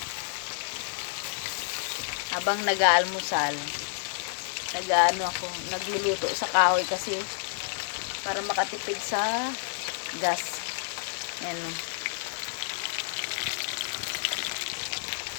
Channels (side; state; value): right; silent; digital silence